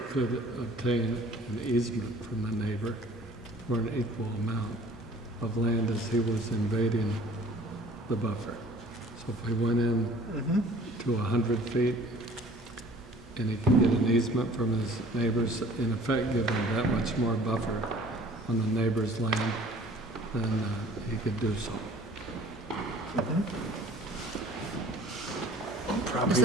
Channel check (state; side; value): normal; both; correlation 0.50